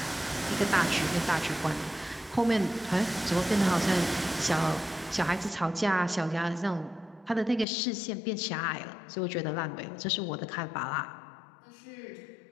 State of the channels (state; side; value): drops out; right; at 7.7 s